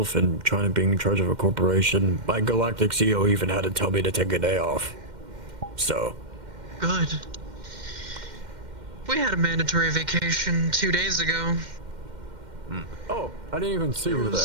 and trying to be in charge of a corporation, my galactic CEO even had to tell me to take a day off. So. Good. We had a mandatory vacation 2 days ago. Oh, I didn't even see It you there.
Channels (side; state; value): left; late; 2.1 ms